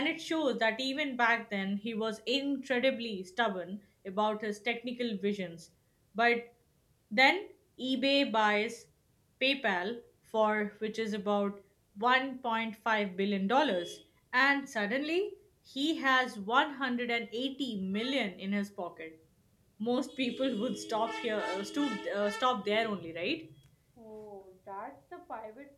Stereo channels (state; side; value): identical; both; correlation 1.00